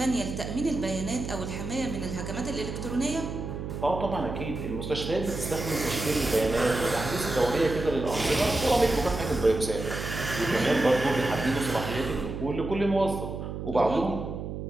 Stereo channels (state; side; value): noise; right; hum, 6 dB below the sound